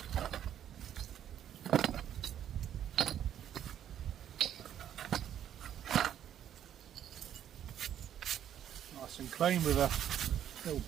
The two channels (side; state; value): left; quieter; 10.2 dB